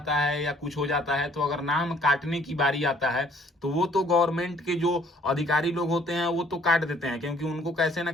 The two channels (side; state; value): both; normal; correlation 0.59